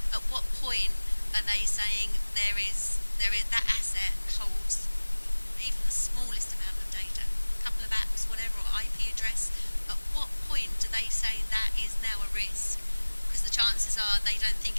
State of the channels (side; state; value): both; inverted; correlation -1.00